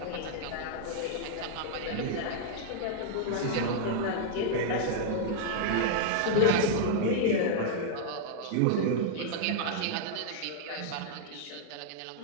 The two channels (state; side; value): different; both; correlation -0.01